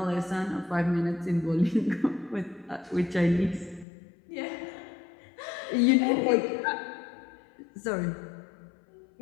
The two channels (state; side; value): drops out; right; at 3.9 s